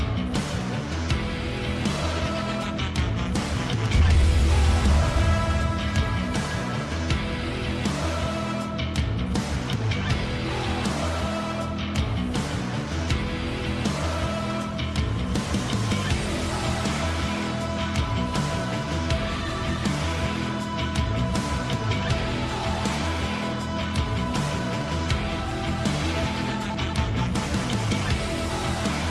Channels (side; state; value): both; identical; correlation 1.00